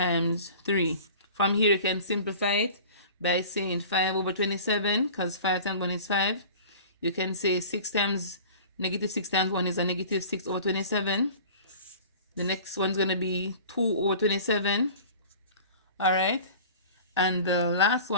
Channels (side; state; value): both; inverted; correlation -0.42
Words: 3. From here, you can simplify it by saying 5 over 27, because 5 times 1 is 5. You can say 6 times, negative 6 times 1 is a negative 6 over 27. The next one's going to be 2 over 27. All right. And the last